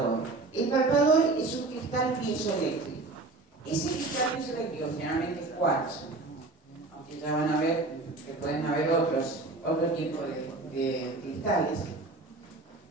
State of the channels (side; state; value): left; quieter; 3.3 dB